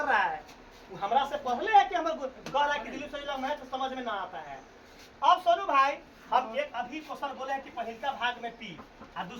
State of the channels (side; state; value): both; identical; correlation 1.00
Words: रहा है? वो हमरा से पहले है कि हम कह रहा है कि दिलीप सर जी मैथ समझ में ना आता है। अब सोनू भाई हम एक अभी क्वेश्चन बोले हैं कि पहलका भाग में पी और